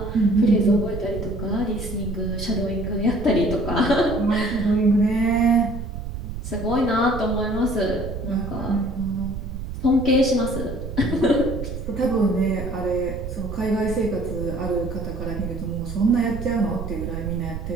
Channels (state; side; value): noise; right; rumble, 7 dB below the sound